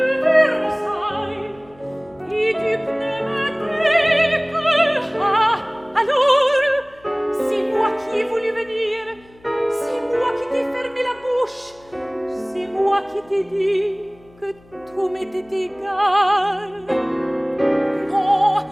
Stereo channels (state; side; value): noise; left; hum, 28 dB below the sound